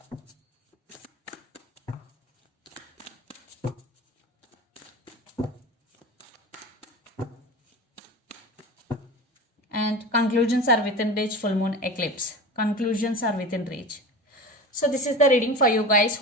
And conclusions are within reach, full moon eclipse. Conclusions are within reach. So this is the reading for you guys.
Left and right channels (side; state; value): both; normal; correlation 0.31